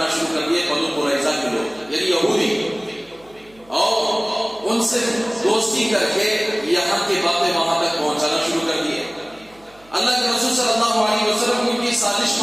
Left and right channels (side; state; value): right; noise; hum, 28 dB below the sound